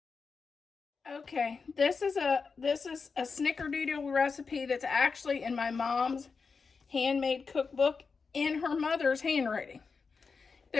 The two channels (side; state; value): right; quieter; 5.0 dB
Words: Okay, this is a snickerdoodle recipe that's actually in my mom's handmade cookbook in her mother's handwriting